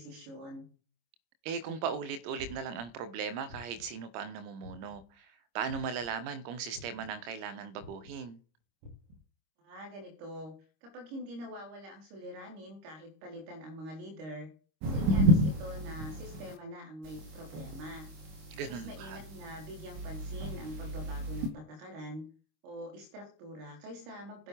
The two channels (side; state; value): left; late; 25 ms